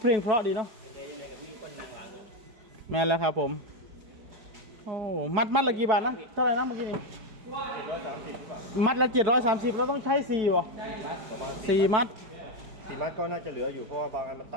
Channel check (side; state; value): left; late; 4.9 ms